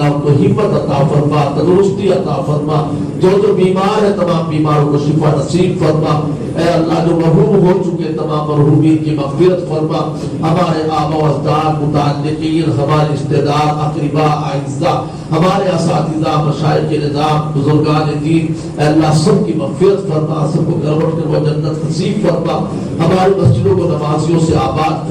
ان کو ہمت عطا فرما، تندرستی عطا فرما. جو بیمار ہے تمام بیماروں کو شفا نصیب فرما. اے اللہ جو مرحوم ہو چکے تمام مرحومین کی مغفرت فرما. ہمارے آبا و اجداد، متعلقین، ہمارے رشتہ دار، اقرباء، اعزاء، ہمارے اساتذہ، مشائخ نظام، بزرگان دین، اے اللہ سب کی مغفرت فرما، سب کو گھر لوٹ کر وہ جنت نصیب فرما. ہماری مسجدوں کو نمازیوں سے آباد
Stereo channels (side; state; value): both; identical; correlation 1.00